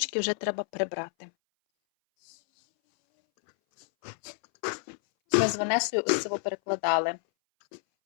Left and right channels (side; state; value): right; silent; 59 dB below the other